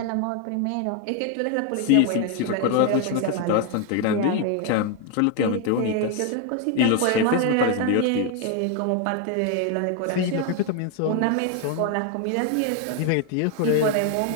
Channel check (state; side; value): different; both; correlation 0.01